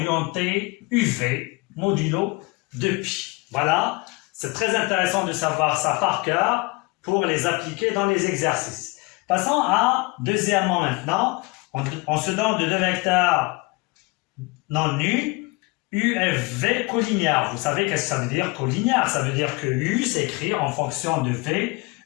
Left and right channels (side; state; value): right; quieter; 25.6 dB